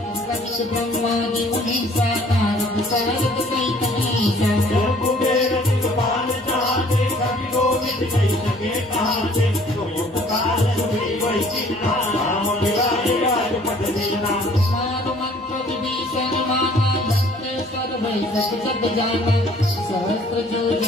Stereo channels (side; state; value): both; normal; correlation 0.56